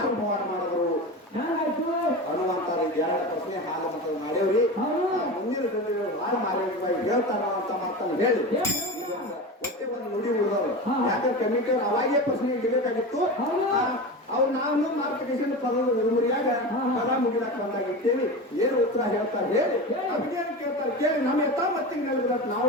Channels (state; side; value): normal; both; correlation 0.26